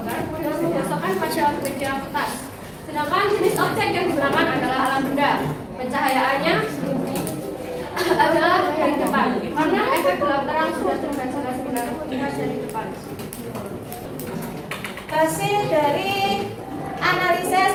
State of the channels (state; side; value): identical; both; correlation 1.00